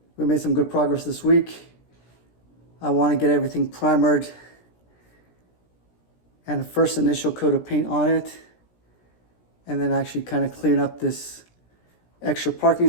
We made some good progress this week. I want to get everything primered and a first initial coat of paint on it, and then actually kind of clean up this extra parking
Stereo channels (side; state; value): right; late; 17 ms